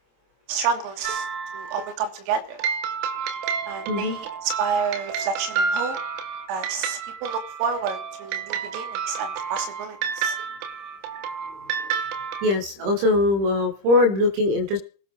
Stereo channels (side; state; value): left; late; 26 ms